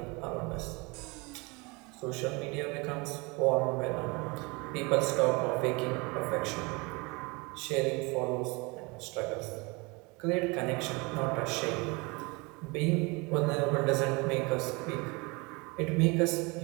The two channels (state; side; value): quieter; left; 27.2 dB